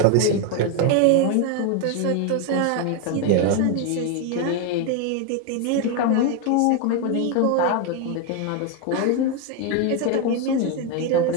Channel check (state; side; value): different; both; correlation 0.01